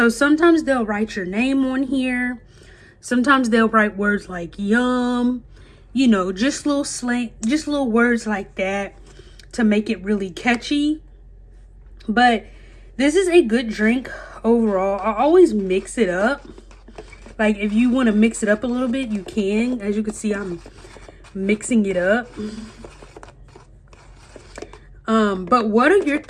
sometimes they'll write your name on here. Sometimes they'll write words like yum, just little slang, just little words like that to make it really catchy. But this is a good drink overall. I always mix it up. Like if you want to mix it up a little bit, you can. As you can see, I'm mixing it up. But what are your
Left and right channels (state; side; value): identical; both; correlation 1.00